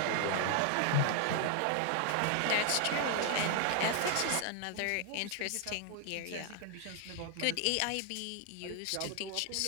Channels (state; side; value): different; both; correlation 0.00